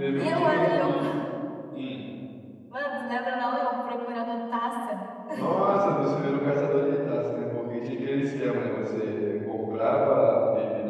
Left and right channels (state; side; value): identical; both; correlation 1.00